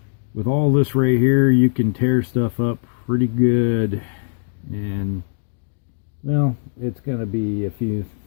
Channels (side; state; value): right; silent; digital silence